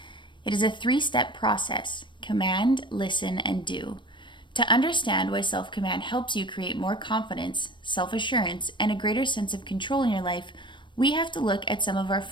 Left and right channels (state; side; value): late; right; 0.23 ms